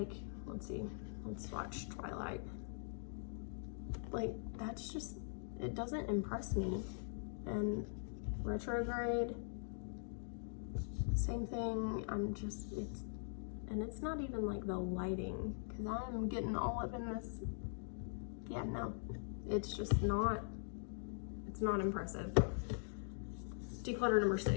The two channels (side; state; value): right; silent; digital silence